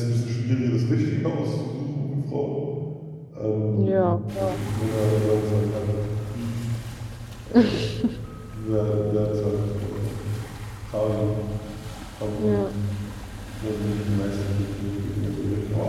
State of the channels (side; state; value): both; identical; correlation 1.00